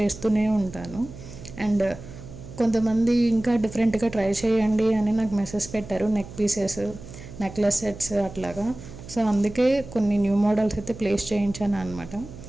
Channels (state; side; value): noise; right; hum, 15 dB below the sound